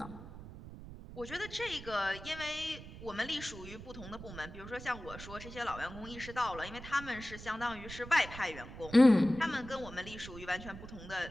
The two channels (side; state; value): right; noise; rumble, 13 dB below the sound